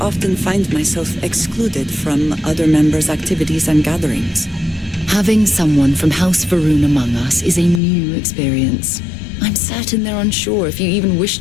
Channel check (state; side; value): drops out; right; at 7.8 s